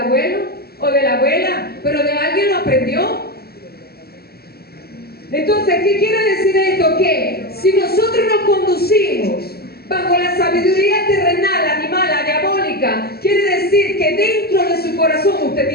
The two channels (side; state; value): right; late; 0.46 ms